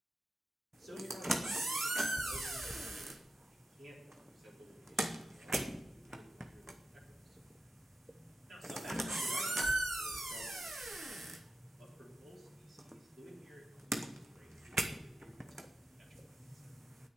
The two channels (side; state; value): both; normal; correlation 0.91